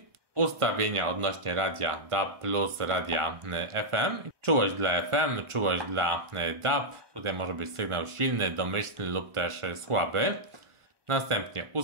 Ustawienia odnośnie radia DAB plus radia FM. Czułość dla FM, czułość dla DAB. Tutaj może być sygnał silny, domyślny lub też słaby. Następnie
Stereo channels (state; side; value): late; left; 1.4 ms